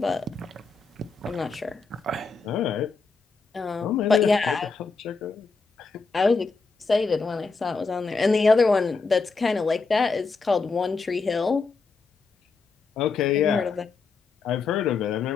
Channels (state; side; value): quieter; right; 4.5 dB